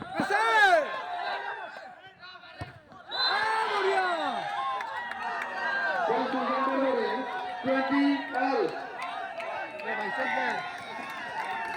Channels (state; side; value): identical; both; correlation 1.00